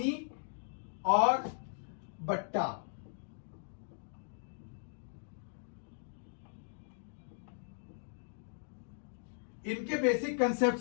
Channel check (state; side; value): silent; right; digital silence